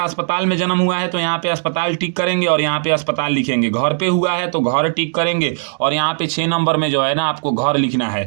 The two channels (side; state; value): left; silent; digital silence